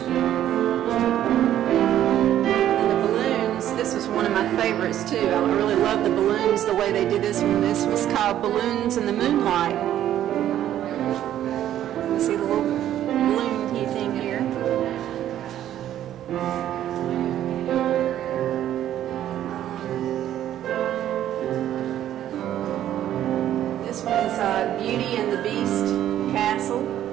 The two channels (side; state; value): left; quieter; 11.7 dB